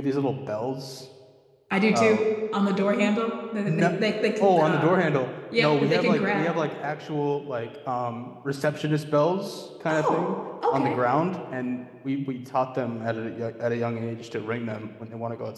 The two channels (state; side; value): identical; both; correlation 1.00